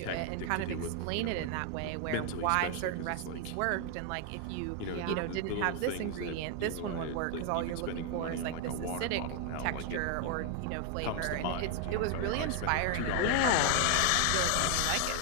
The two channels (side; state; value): both; different; correlation 0.00